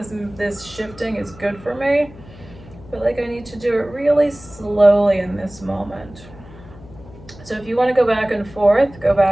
shifting is good for me. I feel like I need to do it really slowly in this moment. So if you want to go back and forth, go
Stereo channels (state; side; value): noise; left; hum, 20 dB below the sound